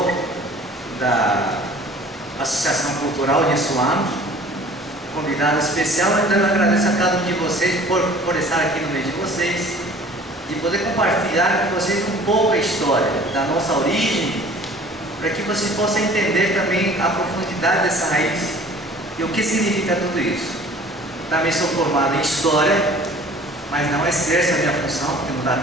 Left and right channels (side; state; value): both; normal; correlation 0.49